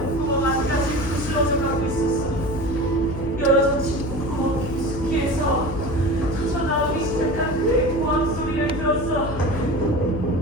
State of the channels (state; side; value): noise; left; hum, 8 dB below the sound